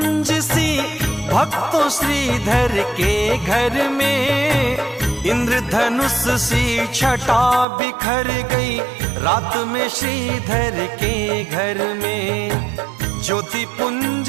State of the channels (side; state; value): left; drops out; at 7.7 s